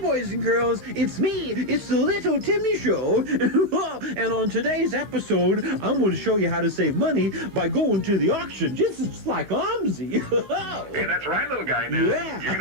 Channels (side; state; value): left; late; 16 ms